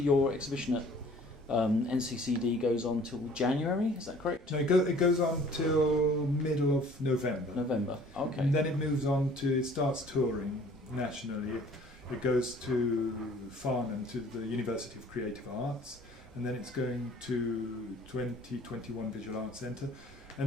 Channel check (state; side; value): normal; both; correlation 0.53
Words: your exhibition at NCCD goes on till January, is that correct? No, it goes on till middle of November. November, okay. And then it starts touring nationally. It goes to Farnham, to the University of Creative Arts, and then it's going to 2021 Visual Arts Centre.